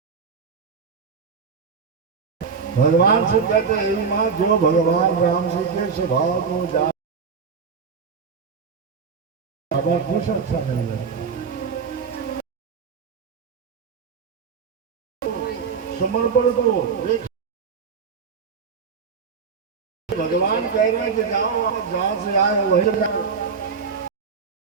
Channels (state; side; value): quieter; left; 5.7 dB